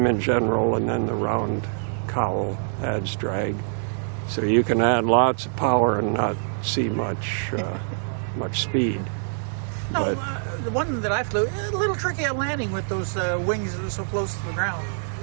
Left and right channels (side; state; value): left; silent; 62 dB below the other